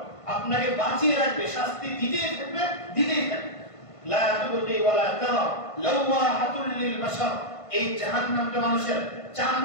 আপনাকে বাঁচিয়ে রাখবে, শাস্তি দিতেই থাকবে, দিতেই থাকবে। লা তুবকি ওয়া লা তারা লাওয়াহাতুল লিল বাশার। এই জাহান্নামটা মানুষের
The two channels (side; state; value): right; late; 1.5 ms